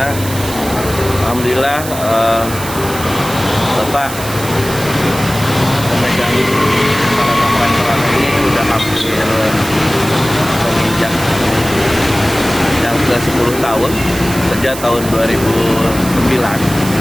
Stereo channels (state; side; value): noise; right; hiss, 10 dB below the sound